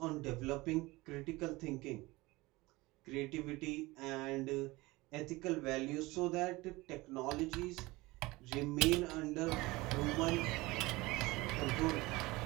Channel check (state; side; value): quieter; left; 21.3 dB